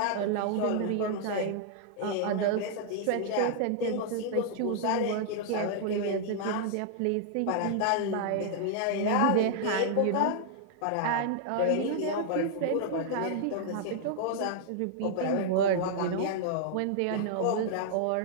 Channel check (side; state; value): both; different; correlation -0.01